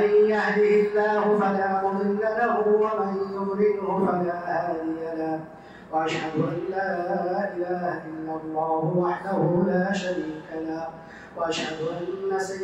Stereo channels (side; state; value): both; identical; correlation 1.00